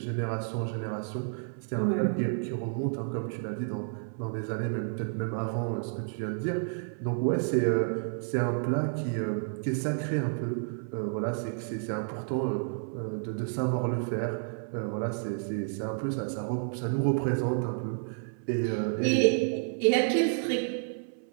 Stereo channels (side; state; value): left; silent; 57 dB below the other